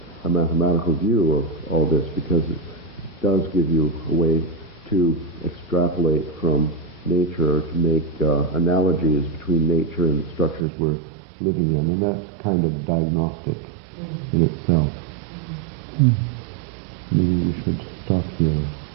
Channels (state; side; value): drops out; left; at 10.7 s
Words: a mathematical view of all this, because it does give you a way to extrapolate from nature, to make analogies between nature and the structures we're living in, and that's kind of diagnostic in itself. Maybe we should stop here.